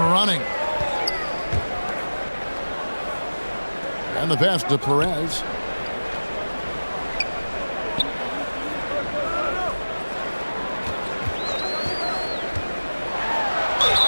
And the pass to Perez.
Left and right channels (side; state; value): both; inverted; correlation -1.00